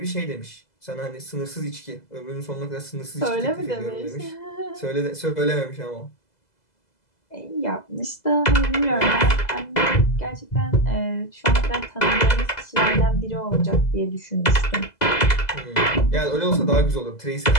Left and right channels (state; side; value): late; right; 2.0 ms